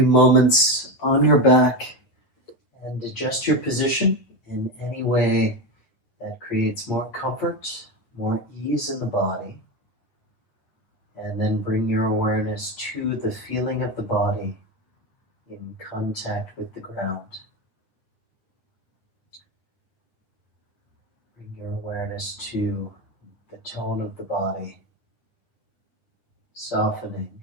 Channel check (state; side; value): late; right; 9.0 ms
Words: moments on your back and adjust your position in any way that creates more comfort, more ease in the body. And then bring your awareness to the feeling of the body in contact with the ground. Bring your awareness to the tone of the body, softening